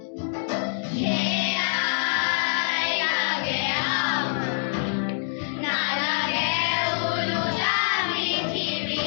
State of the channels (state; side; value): silent; right; digital silence